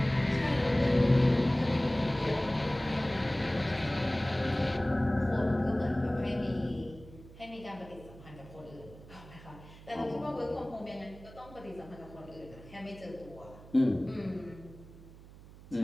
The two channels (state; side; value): noise; right; hum, 19 dB below the sound